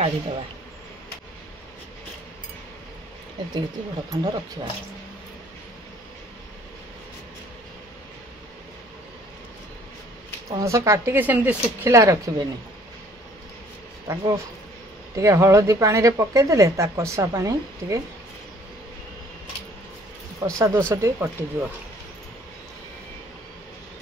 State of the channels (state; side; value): normal; both; correlation 0.58